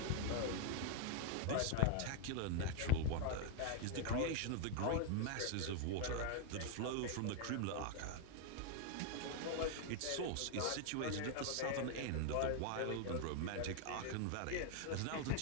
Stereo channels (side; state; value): both; different; correlation 0.00